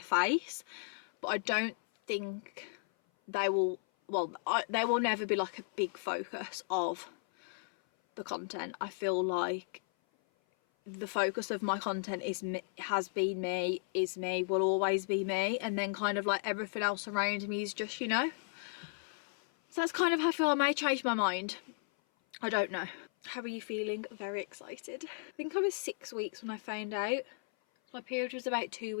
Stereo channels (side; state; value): right; silent; 54 dB below the other